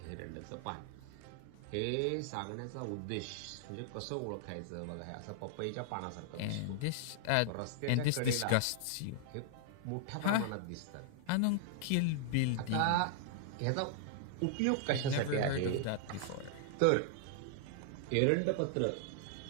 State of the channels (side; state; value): both; different; correlation -0.01